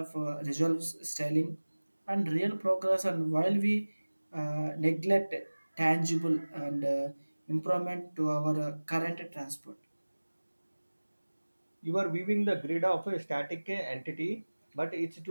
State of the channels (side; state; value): both; inverted; correlation -1.00